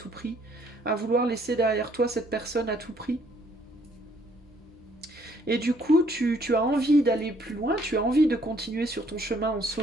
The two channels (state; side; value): normal; both; correlation 0.65